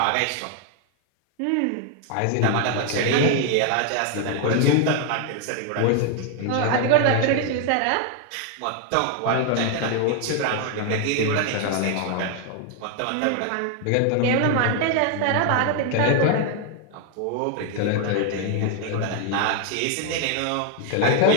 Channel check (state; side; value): different; both; correlation 0.01